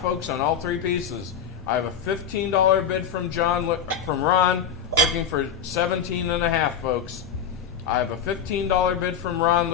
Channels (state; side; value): quieter; right; 7.3 dB